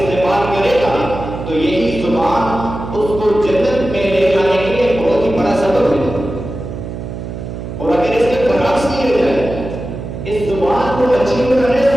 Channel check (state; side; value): noise; right; hum, 8 dB below the sound